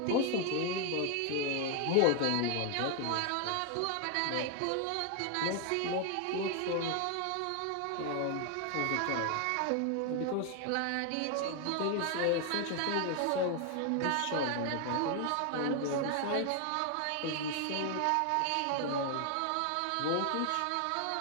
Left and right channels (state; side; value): different; both; correlation 0.00